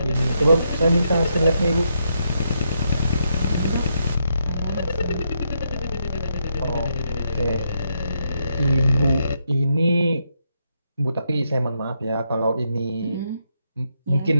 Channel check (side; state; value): both; inverted; correlation -0.79